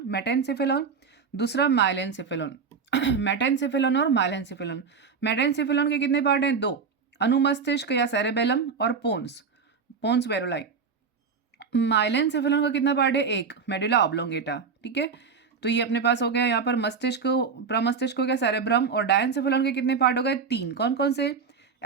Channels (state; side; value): quieter; left; 5.6 dB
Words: मेटेनसेफेलॉन, दूसरा माइलेनसेफेलॉन। मेटेनसेफेलॉन और माइलेनसेफेलॉन। मेटेनसेफेलॉन के कितने पार्ट हैं? दो, अनुमस्तिष्क या सेरेबेलम और पोन्स, पोन्स वेरोलाई। माइलेनसेफेलॉन का कितना पार्ट है? एक, मेडुला ऑब्लोंगेटा। ठीक है, तो ये अपने पास हो गया। यहाँ पर मस्तिष्क, प्रमस्तिष्क हो गया, सेरेब्रम, और डायनसेफेलॉन के कितने पार्ट हो गए? तीन। कौन कौन से?